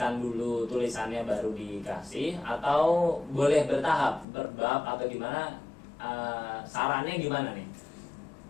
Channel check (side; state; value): right; drops out; at 4.2 s